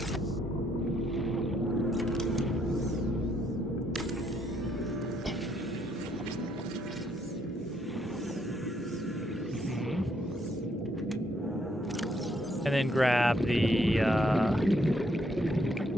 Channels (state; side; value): normal; both; correlation 0.72